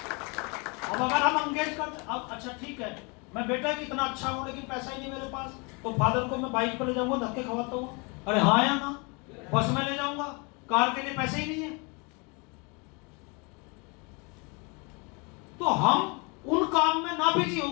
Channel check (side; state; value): right; quieter; 30.8 dB